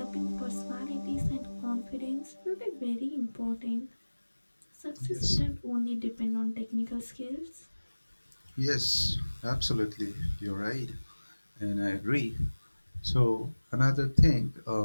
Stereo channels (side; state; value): both; inverted; correlation -1.00